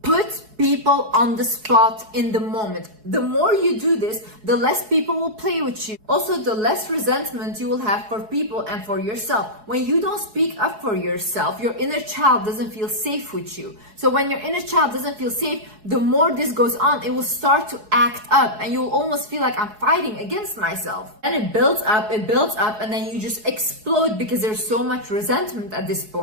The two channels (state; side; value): late; left; 4.7 ms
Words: Put people on the spot in the moment. The more you do this, the less people will play with you. Also, the less resentment you will have for people and for yourself. When you don't speak up for yourself, your inner child doesn't feel safe with you. So when your inner child doesn't feel safe, the more this goes on, it will start to act up and you will almost feel like I'm fighting against myself. And it builds up, and then you just explode because there's so much resentment at this